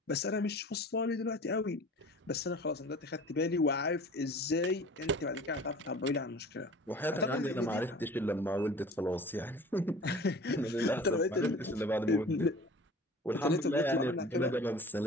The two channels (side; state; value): both; normal; correlation 0.43